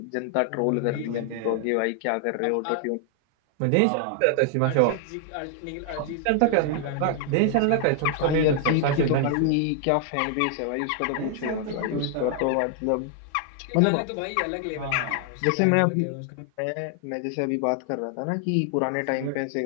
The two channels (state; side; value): different; both; correlation 0.00